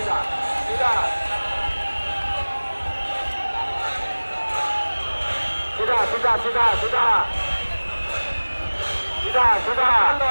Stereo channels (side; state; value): both; inverted; correlation -1.00